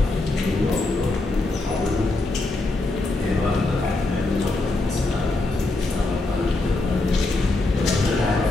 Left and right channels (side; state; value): right; quieter; 3.0 dB